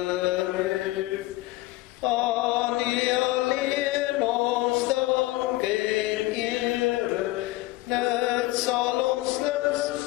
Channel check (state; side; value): quieter; right; 18.9 dB